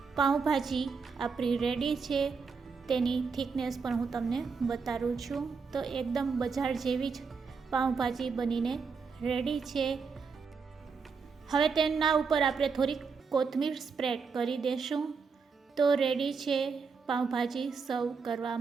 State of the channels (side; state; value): left; quieter; 5.3 dB